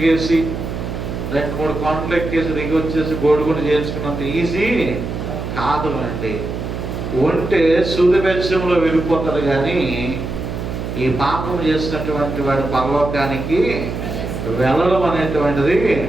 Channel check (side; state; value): right; noise; hum, 5 dB below the sound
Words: 2-3 కొండలు ఎక్కేసి దిగి వచ్చేసి గోడుగుండు చేయించుకున్నంత ఈజీ కాదు అండి. ఉంటే సూదిబెచ్చంలో వెళ్ళిపోతారు, కానీ ఈ పాపం చేసినటువంటి వాడి పరలోకానికి వెళ్ళడం అనేటువంటిది